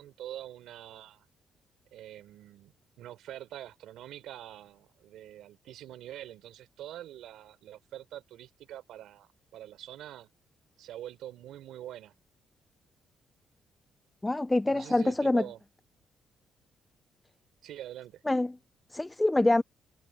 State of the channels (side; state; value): both; normal; correlation 0.96